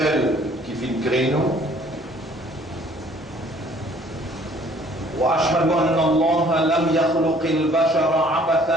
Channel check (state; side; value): normal; both; correlation 0.57